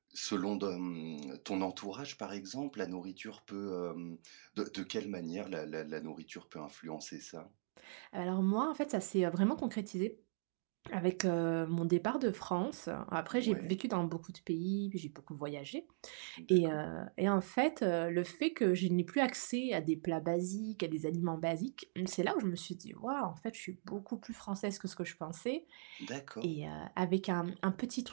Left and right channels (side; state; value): left; silent; digital silence